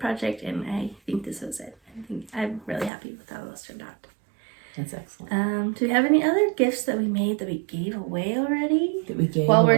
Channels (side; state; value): left; drops out; at 2.9 s